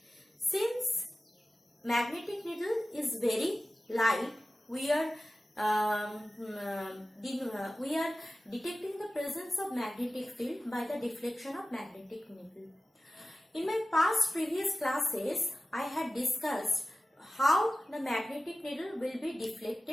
Since magnetic needle is very light, we are detecting the presence of magnetic field by the deflection of magnetic needle. In my previous classes, I had discussed how the magnetic needle will be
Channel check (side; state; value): both; normal; correlation 0.95